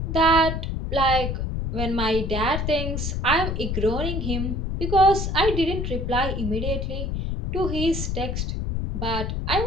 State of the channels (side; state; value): left; noise; rumble, 2 dB below the sound